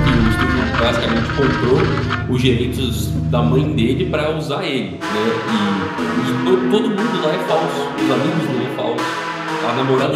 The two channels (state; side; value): identical; both; correlation 1.00